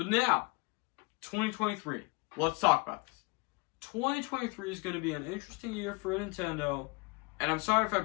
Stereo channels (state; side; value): quieter; right; 29.1 dB